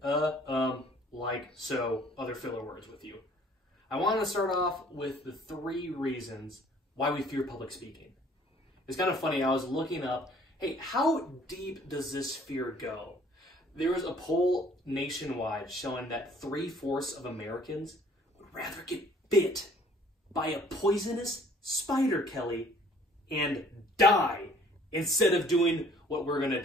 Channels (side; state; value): both; normal; correlation 0.56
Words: like so other filler words with you. I want to start off with the 3 reasons why we fear public speaking. It's kind of funny, I was looking up, hey, how deep does this fear go? There was a poll nationwide showing that 3/4 of Americans would rather get bit by a poisonous spider, Kelly, and die instead of doing what we're going to